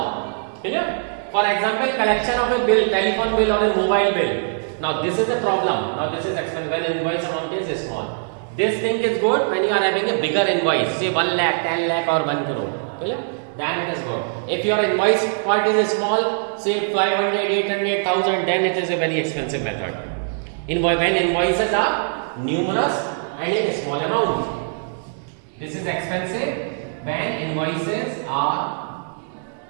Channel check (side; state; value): left; silent; digital silence